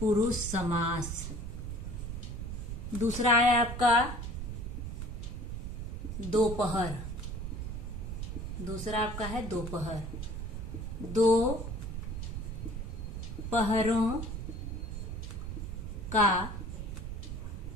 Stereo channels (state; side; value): noise; right; rumble, 5 dB below the sound